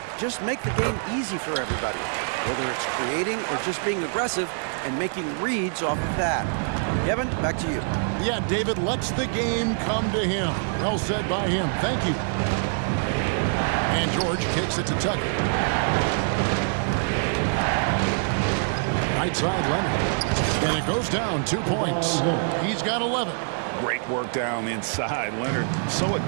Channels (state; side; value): silent; left; digital silence